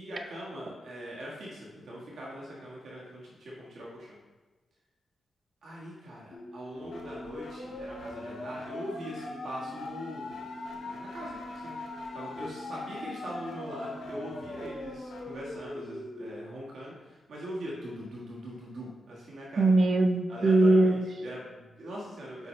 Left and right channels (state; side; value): normal; both; correlation 0.88